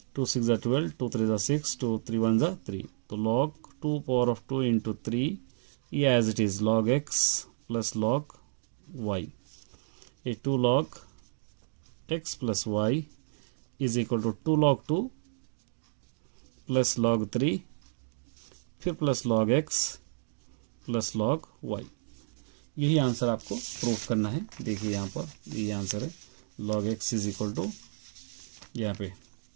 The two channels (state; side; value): silent; left; digital silence